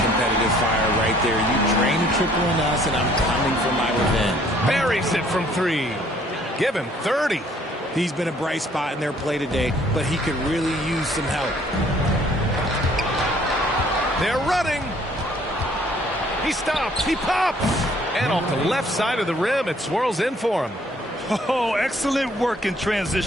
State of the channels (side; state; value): both; normal; correlation 0.60